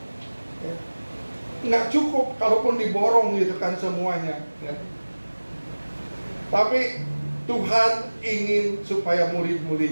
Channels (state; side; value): inverted; both; correlation -1.00